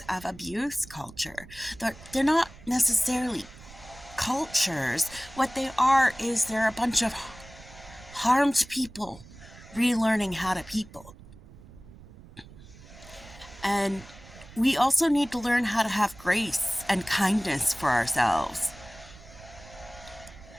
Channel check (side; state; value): right; noise; rumble, 20 dB below the sound